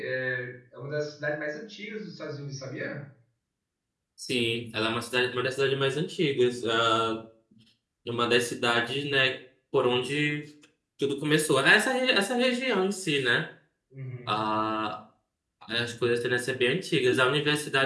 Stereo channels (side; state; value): both; identical; correlation 1.00